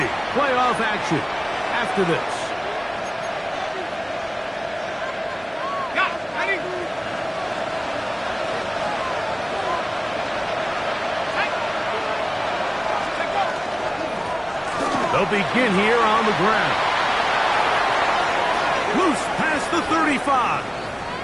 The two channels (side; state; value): both; identical; correlation 1.00